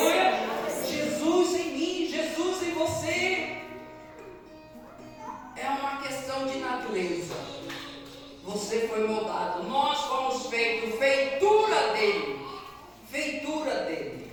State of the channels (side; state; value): both; identical; correlation 1.00